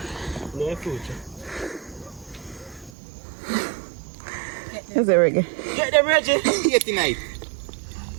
Is it Reggie? Get them ready. Here tonight.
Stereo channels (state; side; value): drops out; left; at 2.9 s